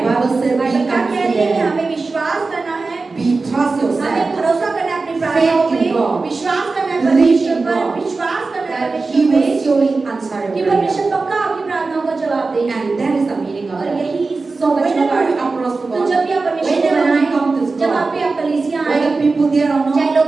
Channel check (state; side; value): quieter; left; 3.9 dB